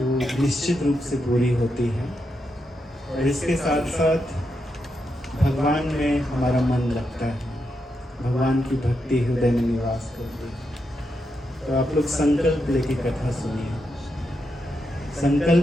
निश्चित रूप से पूरी होती है। और इसके साथ साथ भगवान में हमारा मन लगता है, भगवान की भक्ति हृदय में निवास करती है। तो आप लोग संकल्प लेके कथा सुनिए।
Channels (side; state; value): both; normal; correlation 0.84